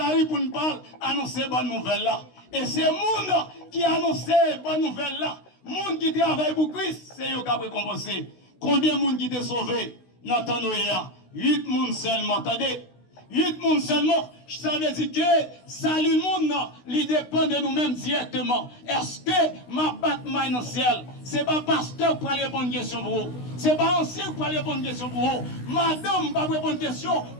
rue, pour ne pas annoncer bonne nouvelle là. Et c'est le monde qui annonce bonne nouvelle là. Le monde qui travaille pour Christ, c'est eux qui ont récompensé. Combien de monde qui est sauvé? N'entendons rien. 8 personnes seulement. Attendez. 8 personnes seulement. Ça veut dire que salut le monde, il dépend de nous-mêmes directement. Est-ce que ma patte maille dans le ciel? Ce n'est pas pasteur pour aller répondre une question pour vous. Ce n'est pas ancien pour aller répondre une question pour vous. Madame va répondre une question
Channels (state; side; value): late; right; 16 ms